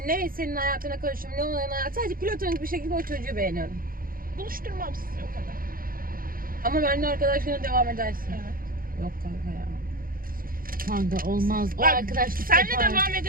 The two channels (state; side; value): late; left; 0.42 ms